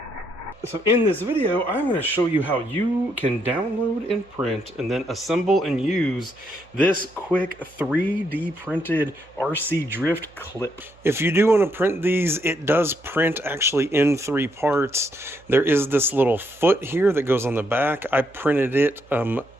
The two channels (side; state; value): right; noise; hum, 27 dB below the sound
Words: in this video, I'm going to show you how you can download and print and then assemble and use this quick 3D printed RC drift clip. If you do want to print these, it does print actually in 3 parts. There is this little foot here that goes on the back. I printed it